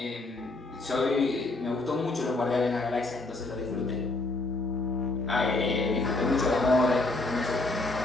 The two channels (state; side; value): quieter; right; 3.1 dB